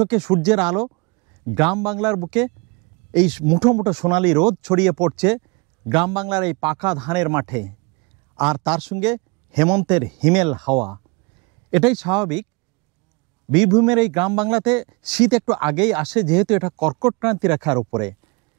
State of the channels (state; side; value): quieter; left; 28.9 dB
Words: সূর্যের আলো, গ্রাম বাংলার বুকে এই মুঠো মুঠো সোনালি রোদ ছড়িয়ে পড়ছে গ্রাম বাংলার এই পাকা ধানের মাঠে, আর তার সঙ্গে হেমন্তের হিমেল হাওয়া। এটাই স্বাভাবিক। বীরভূমের এই গ্রাম বাংলাতে শীত একটু আগেই আসে, যেহেতু এটা কর্কট ক্রান্তি রেখার উপরে।